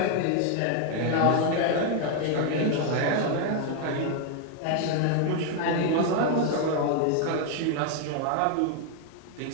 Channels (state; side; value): different; both; correlation 0.01